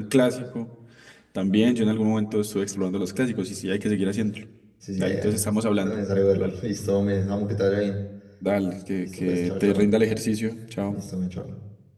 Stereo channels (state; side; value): identical; both; correlation 1.00